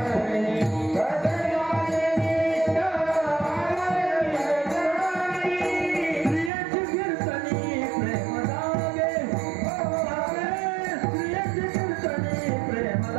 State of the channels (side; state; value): left; drops out; at 6.5 s